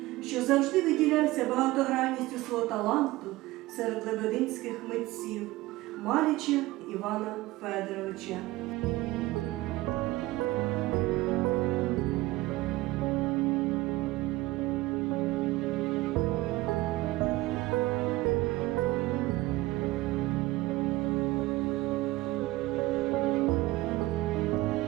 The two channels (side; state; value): left; quieter; 18.8 dB